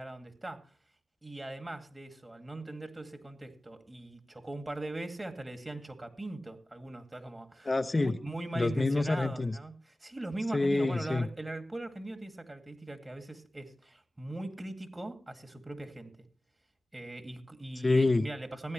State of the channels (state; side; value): normal; both; correlation 0.97